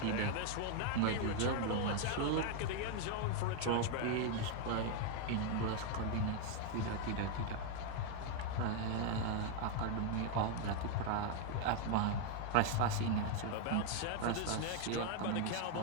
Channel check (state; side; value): different; both; correlation 0.00